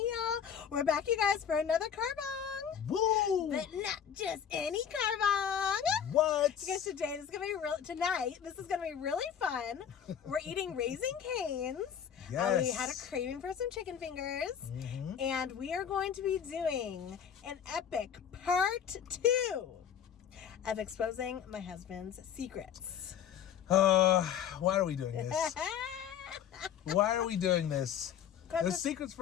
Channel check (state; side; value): quieter; right; 8.5 dB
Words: We're back, you guys, for another carbong. Woo! But not just any carbong. What? Because today this is gonna be tonight. This is gonna be really fun. We're eating Raising Cane's. Yes. We had a craving for some chicken fingers, and we are going to be doing an epic part 2 of exposing my husband's secrets. Why are we doing this? Why are we doing this? There's secrets